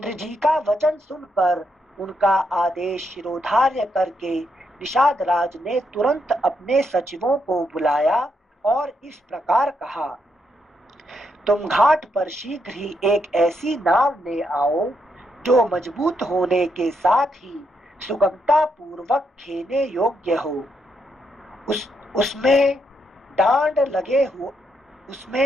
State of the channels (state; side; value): normal; both; correlation 0.79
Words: जी का वचन सुनकर उनका आदेश शिरोधार्य करके निषाद राज ने तुरंत अपने सचिवों को बुलाया और इस प्रकार कहा, तुम घाट पर शीघ्र ही एक ऐसी नाव ले आओ जो मजबूत होने के साथ ही सुगमता पूर्वक खेने योग्य हो। उसमें डांड